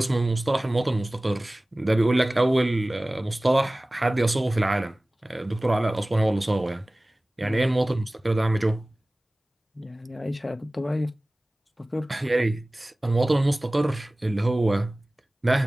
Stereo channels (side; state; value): both; normal; correlation 0.98